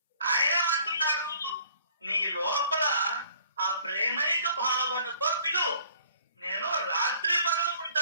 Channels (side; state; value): both; inverted; correlation -0.56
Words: ఆయన అంటున్నాడు, నీ లోపల ఆ ప్రేమైక భావనతో పిలువు, నేను రాత్రి పగలు